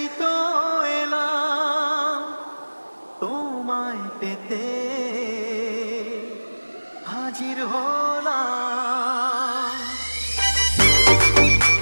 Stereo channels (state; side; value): inverted; both; correlation -1.00